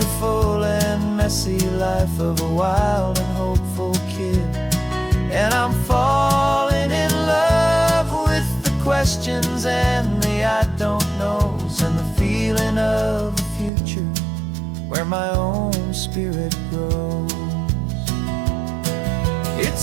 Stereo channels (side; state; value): left; drops out; at 13.7 s